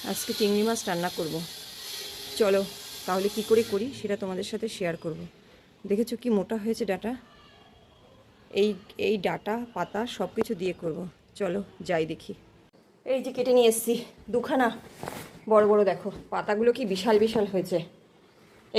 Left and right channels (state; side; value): identical; both; correlation 1.00